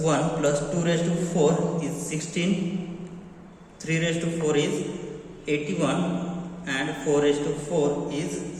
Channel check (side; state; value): both; identical; correlation 1.00